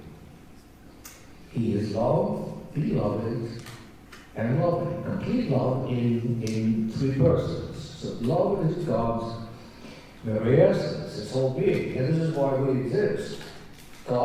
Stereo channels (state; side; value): identical; both; correlation 1.00